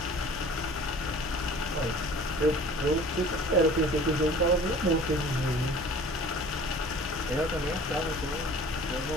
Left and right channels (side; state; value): both; normal; correlation 0.46